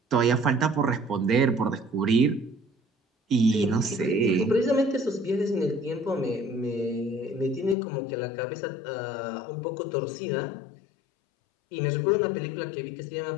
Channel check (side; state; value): right; drops out; at 7.8 s